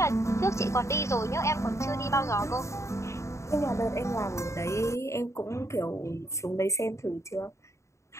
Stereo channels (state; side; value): late; right; 0.14 ms